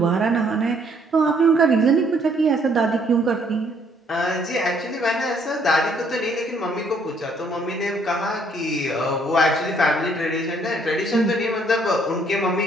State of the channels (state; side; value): normal; both; correlation 0.65